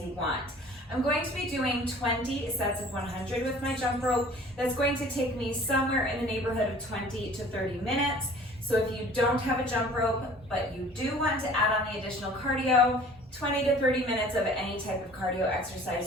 you want. I'm going to be doing 20 sets of 100 with my jump rope. That's going to take me somewhere in the neighborhood of 20 to 30 minutes. So if you don't have a jump rope, but you do want to add on the additional cardio, 20 to 30 minutes of any type of cardio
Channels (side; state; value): both; normal; correlation 0.48